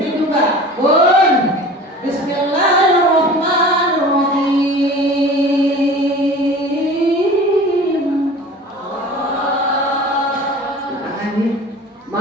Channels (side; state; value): both; normal; correlation 0.40